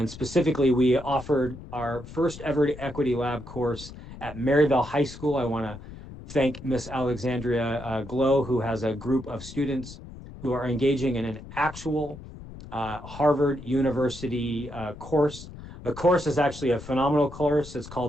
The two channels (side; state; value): left; noise; rumble, 14 dB below the sound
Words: specifically, we offered our first ever Equity Lab course at Maryville High School. I want to thank Miss Alexandria Glow, who has a group of students who are engaging in an actual Harvard University course. The course is actually a phenomenal course. It's